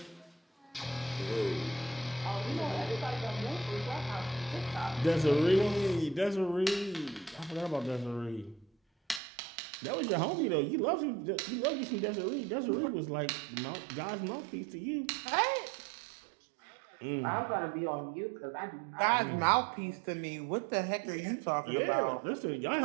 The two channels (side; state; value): left; drops out; at 9.2 s